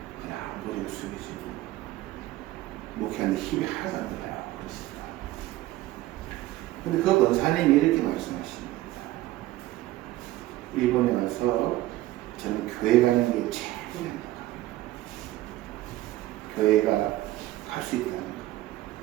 그냥 머리를 숙이시고 목회하는데 힘이 하나도 안 들어요. 그렇습니다. 근데 그 권사님이 이렇게 말씀하십니다. 일본에 와서 저는 교회 가는 게 최고입니다. 교회가 갈 수 있다는 거.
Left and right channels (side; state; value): left; quieter; 16.4 dB